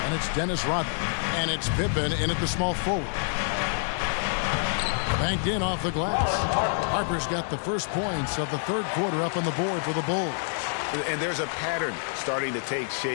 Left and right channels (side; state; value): right; silent; digital silence